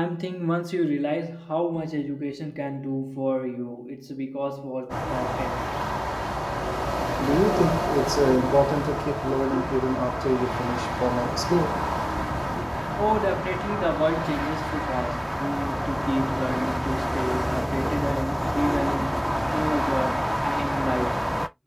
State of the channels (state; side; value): identical; both; correlation 1.00